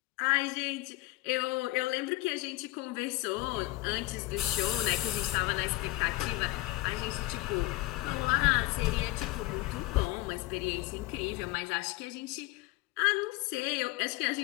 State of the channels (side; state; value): right; quieter; 19.3 dB